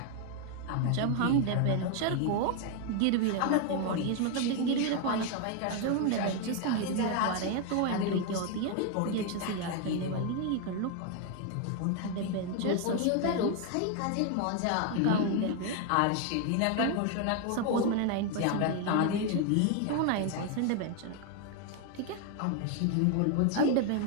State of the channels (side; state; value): both; different; correlation 0.01